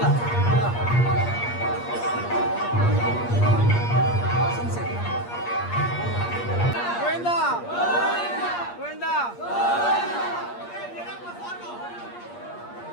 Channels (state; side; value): late; right; 8.5 ms